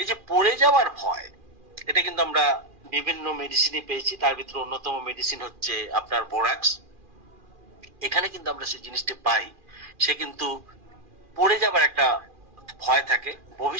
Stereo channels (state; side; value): late; left; 2.4 ms